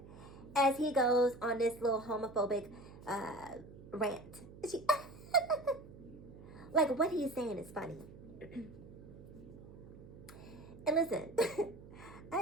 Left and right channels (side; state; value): right; noise; hum, 17 dB below the sound